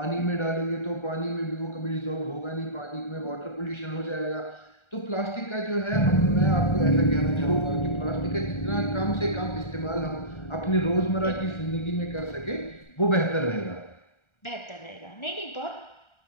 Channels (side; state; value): right; late; 1.4 ms